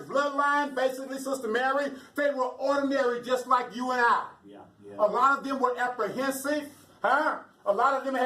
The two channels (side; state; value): both; identical; correlation 1.00